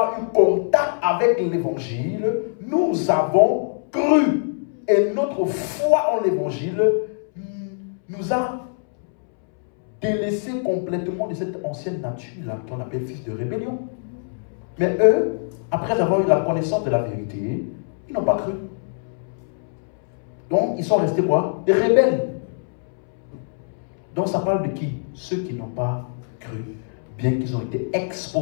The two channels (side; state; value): right; silent; 63 dB below the other